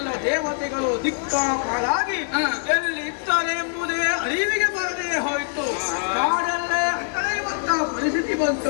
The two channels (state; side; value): silent; right; digital silence